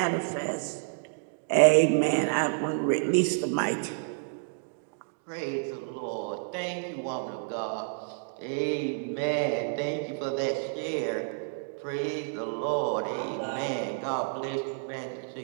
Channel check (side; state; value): left; silent; digital silence